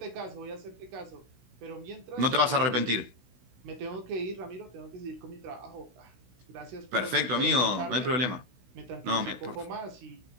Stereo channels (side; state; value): left; late; 16 ms